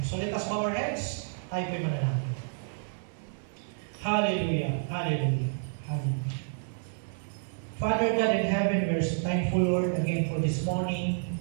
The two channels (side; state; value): left; silent; 58 dB below the other